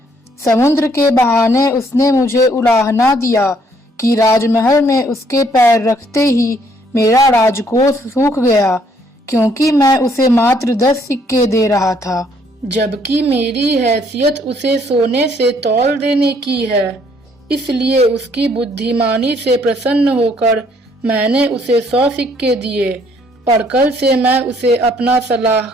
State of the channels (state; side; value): normal; both; correlation 0.66